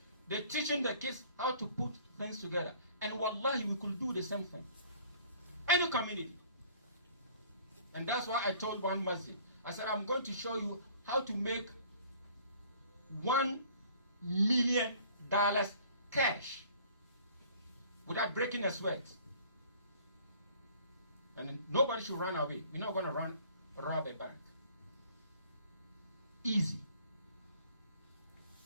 they're teaching the kids how to put things together. And wallahi, we could do the same thing. Any community. And that's why I told one masjid, I said, I'm going to show you how to make $1 million cash without breaking a sweat. And nobody should run away. You're not going to rob a bank. Easy.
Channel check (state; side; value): inverted; both; correlation -0.53